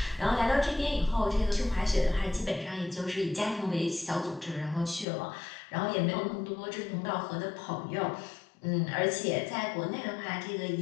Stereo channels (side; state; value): right; drops out; at 5.1 s